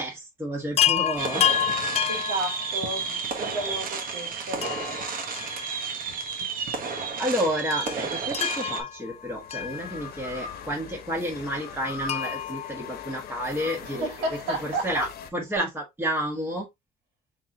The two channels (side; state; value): both; normal; correlation 0.18